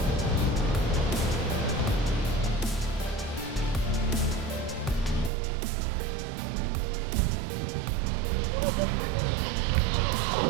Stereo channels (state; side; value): drops out; left; at 5.3 s